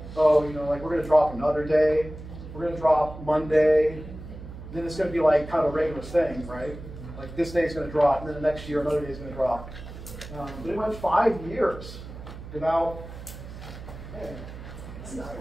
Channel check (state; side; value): noise; right; hum, 13 dB below the sound